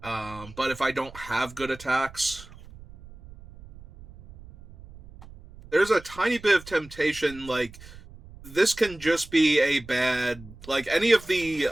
But if I don't have good attacks, there's a tiny bit of temptation, like, this can just be a bad, like, any of the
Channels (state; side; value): noise; right; rumble, 19 dB below the sound